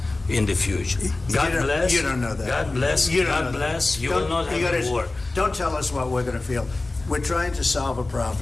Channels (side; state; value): right; quieter; 3.2 dB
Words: in the future. God bless. You don't know that. God bless. God bless. You will not have a war. Don't tell us what we're going to feel. We're trying to solve a